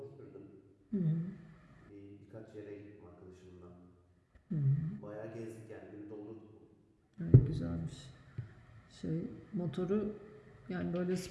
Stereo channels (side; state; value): both; identical; correlation 1.00